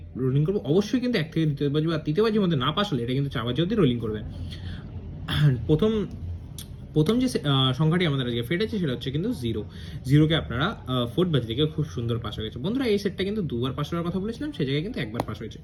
রোলিং করবো? অবশ্যই কিন্তু 1 থেকে দ্বিতীয় বাজি বা তৃতীয় বাজির মধ্যে না পাস হলে এটা কিন্তু 4 বাজি অবধি রোলিং করবে। প্রথম প্রথম যে সংখ্যাটি আমাদের আজকে ফেটেছে সেটা হচ্ছে কিন্তু জিরোকে আপনারা ফোর্থ বাজি থেকে খুব সুন্দর পাস হয়ে গেছে। বন্ধুরা, এই সেটটা কিন্তু দুবার পাস হওয়ার কথা বলেছিলাম, সেই জায়গায় কিন্তু একবার পাস হয়েছে।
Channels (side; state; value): both; identical; correlation 1.00